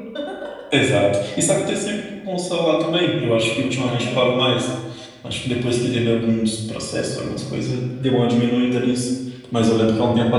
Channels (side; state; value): both; identical; correlation 1.00